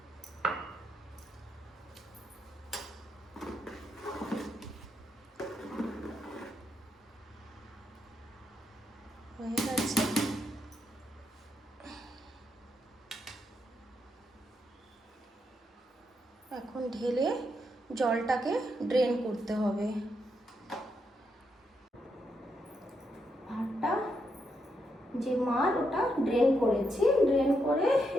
হয়ে গেছে। এখন ঢেলে জলটাকে ড্রেন করতে হবে। ভাতটা যে মার ওটা ড্রেন করেছি, ড্রেন করে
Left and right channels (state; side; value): normal; both; correlation 0.81